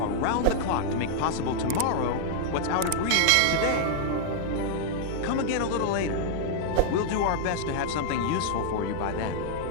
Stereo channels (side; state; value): both; different; correlation -0.01